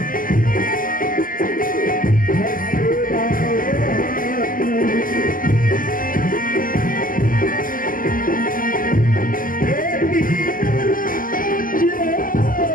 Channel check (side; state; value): right; late; 0.41 ms